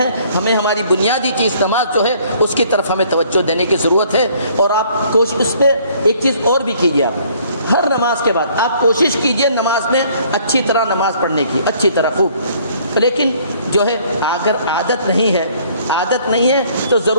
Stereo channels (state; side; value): inverted; both; correlation -0.60